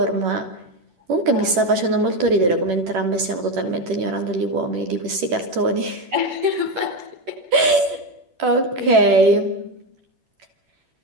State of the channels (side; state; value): left; late; 11 ms